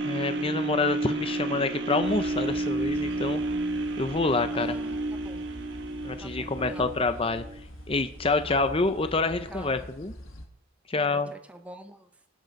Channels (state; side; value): normal; both; correlation 0.37